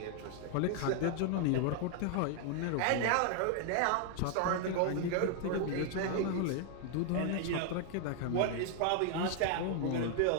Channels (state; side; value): different; both; correlation 0.00